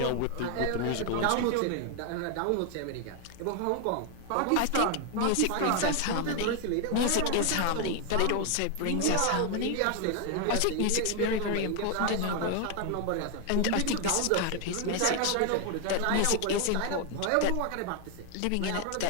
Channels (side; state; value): both; different; correlation 0.00